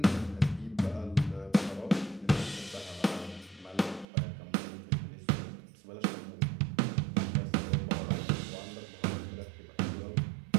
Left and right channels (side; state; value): left; drops out; at 4.0 s